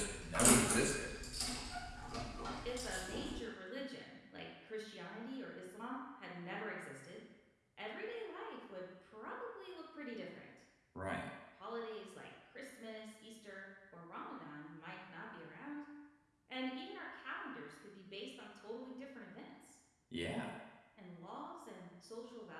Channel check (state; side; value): identical; both; correlation 1.00